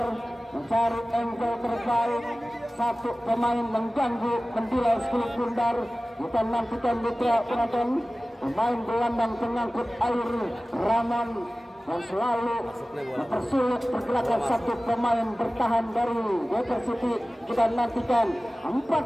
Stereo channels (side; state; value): both; normal; correlation 0.97